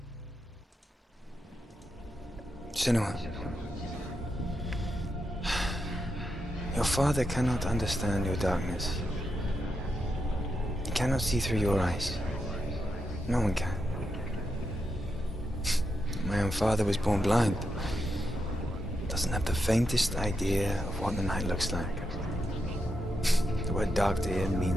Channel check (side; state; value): both; normal; correlation 0.85